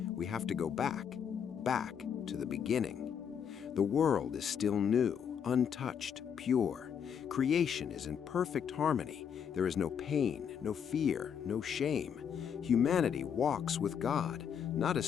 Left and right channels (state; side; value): quieter; right; 7.9 dB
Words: we have to go back to the beginning. The world is still new, untouched, pure. Creation is in perfect harmony. There is no pain, no fear, no shame. Humanity walks with God, not as